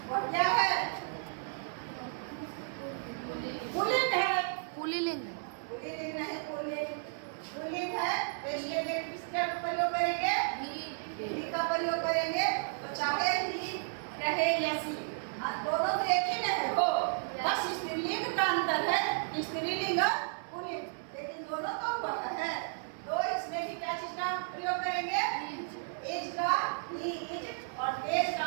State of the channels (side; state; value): left; silent; 56 dB below the other